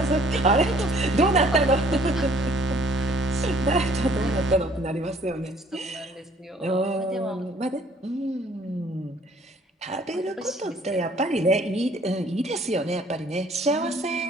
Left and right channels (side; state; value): both; normal; correlation 0.58